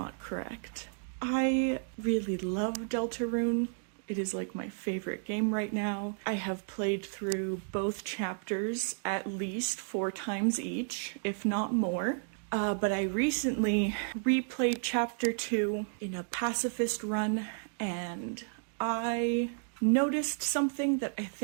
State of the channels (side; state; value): left; silent; digital silence